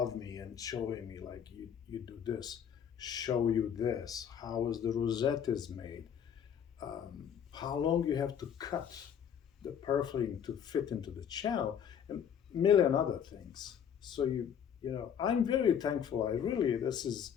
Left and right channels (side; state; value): right; quieter; 8.3 dB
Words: me and showing me like you do this, show you this, how is the rosette is made, how long you have to cut the purfling to fit into the channel, and a million other things. So I'm very thankful. This is